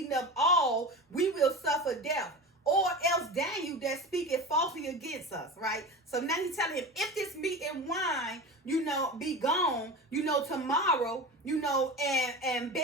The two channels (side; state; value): both; normal; correlation 0.29